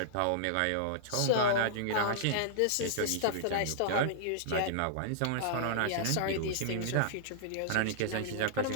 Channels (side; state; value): both; different; correlation -0.01